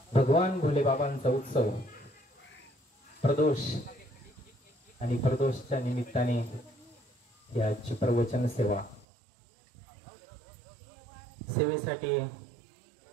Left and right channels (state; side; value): drops out; left; at 9.1 s